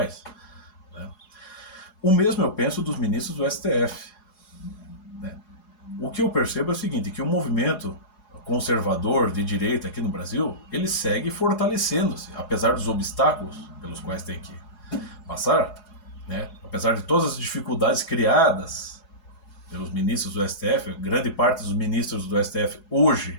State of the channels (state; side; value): late; right; 4.8 ms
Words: Né? O mesmo eu penso dos ministros do STF. Né? O que eu percebo é o seguinte, que o movimento conservador de direita aqui no Brasil, ele segue fortalecendo-se, apesar dos obstáculos pelos quais tem que passar, né? Apesar de todas as dificuldades criadas pelos ministros do STF, grande parte dos ministros do STF